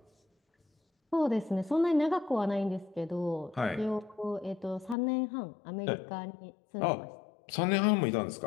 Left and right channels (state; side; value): drops out; right; at 5.0 s